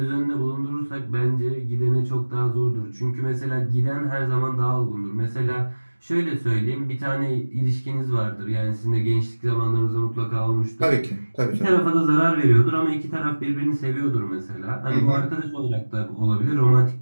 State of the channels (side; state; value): both; inverted; correlation -1.00